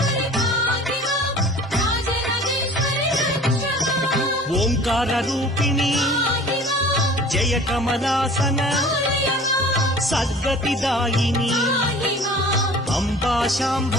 ఓంకార రూపిణి జయ కమలాసన సద్గతిదాయిని అంబా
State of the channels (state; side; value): normal; both; correlation 0.45